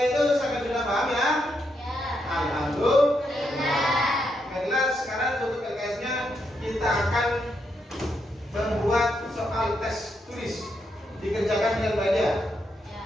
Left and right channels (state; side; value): normal; both; correlation 0.80